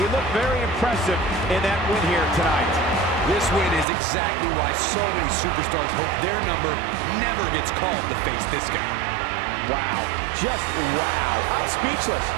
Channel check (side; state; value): left; drops out; at 3.9 s